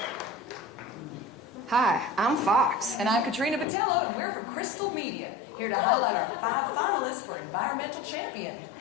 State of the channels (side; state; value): right; drops out; at 3.7 s